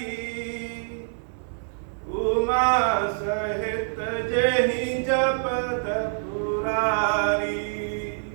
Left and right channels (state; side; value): silent; left; 61 dB below the other